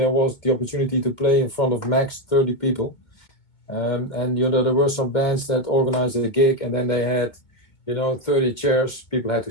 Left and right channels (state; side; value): late; right; 2.2 ms